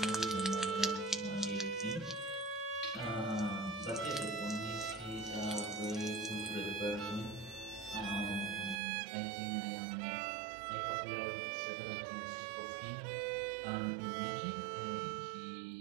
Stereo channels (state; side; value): drops out; left; at 8.8 s